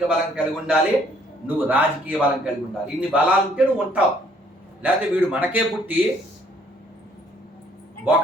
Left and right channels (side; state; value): both; normal; correlation 0.64